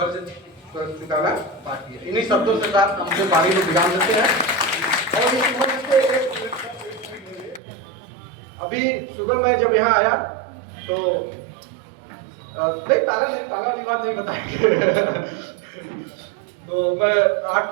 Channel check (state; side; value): drops out; left; at 7.6 s